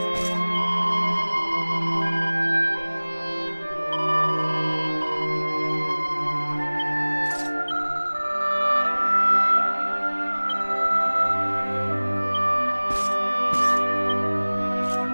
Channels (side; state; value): both; inverted; correlation -1.00